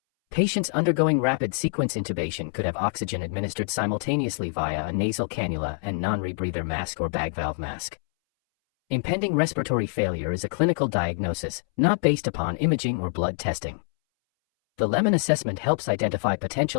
Patients undergoing rapid sequence intubation could have oxygen administered simultaneously via a nasal cannula and non-rebreather mask or bag valve mask. Impending respiratory failure is a clinical diagnosis, not based upon imaging or blood testing. The lemon assessment helps identify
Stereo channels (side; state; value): right; silent; 61 dB below the other